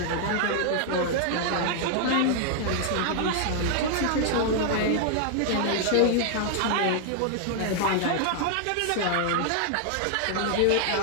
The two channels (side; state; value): both; different; correlation 0.00